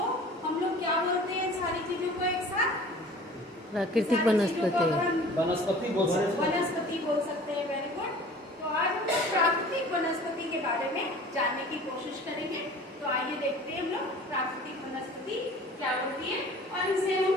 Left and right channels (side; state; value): both; normal; correlation 0.45